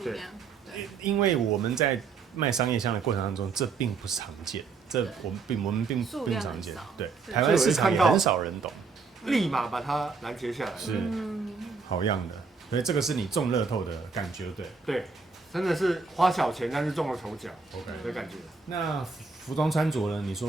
量。因为我们在卖商业香的过程当中，这并不常见。这我们并不常见，对，台湾市场也很少人懂，立马把它拦截下来，是好样的，所以这个是你中乐透的感觉，对，真的是花小钱但是中了头奖 ，OK 的感觉。那服装穿着呢？你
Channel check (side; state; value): left; quieter; 4.8 dB